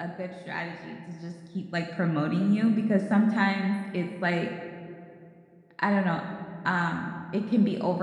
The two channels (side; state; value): both; identical; correlation 1.00